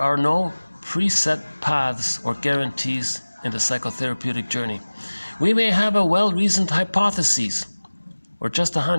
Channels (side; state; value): both; inverted; correlation -1.00